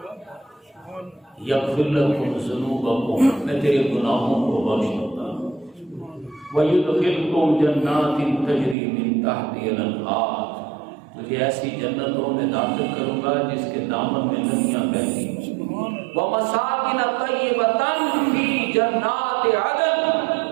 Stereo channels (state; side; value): drops out; left; at 8.8 s